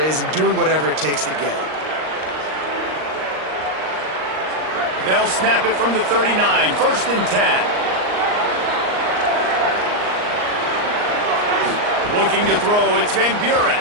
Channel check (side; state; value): left; late; 38 ms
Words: and doing whatever it takes to get it. They'll snap it from the 39, first and 10. Looking to throw, it's Van